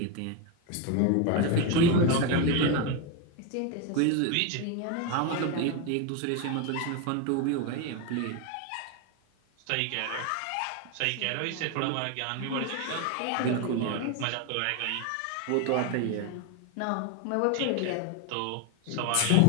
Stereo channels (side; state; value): both; different; correlation 0.02